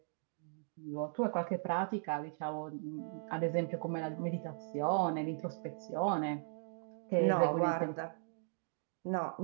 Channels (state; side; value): silent; left; digital silence